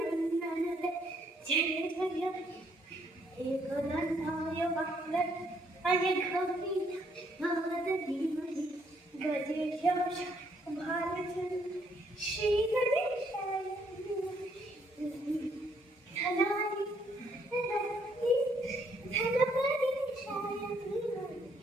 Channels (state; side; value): normal; both; correlation 0.69